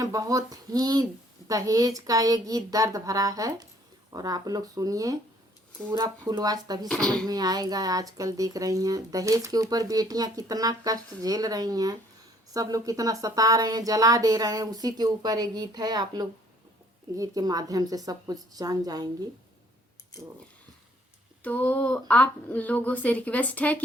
बहुत ही दहेज का ये गीत दर्द भरा है और आप लोग सुनिए पूरा फुलवास तभी समझ में आएगा। आजकल देख रही हैं दहेज के ऊपर बेटियां कितना कष्ट झेल रही हैं, सब लोग कितना सता रहे हैं, जला दे रहे हैं, उसी के ऊपर ये गीत है। आप लोग गीत के माध्यम से सब कुछ जान जाएंगी। तो आप लोगों से रिक्वेस्ट है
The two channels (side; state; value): both; normal; correlation 0.61